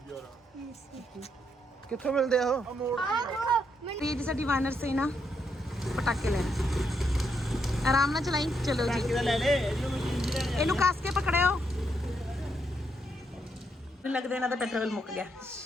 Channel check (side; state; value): both; normal; correlation 0.78